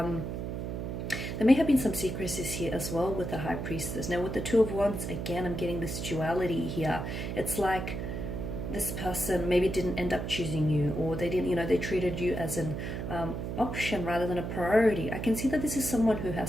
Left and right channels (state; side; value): noise; right; hum, 4 dB below the sound